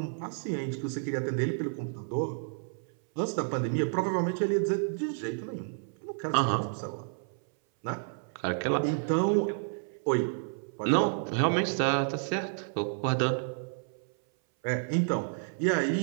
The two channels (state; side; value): silent; left; 57 dB below the other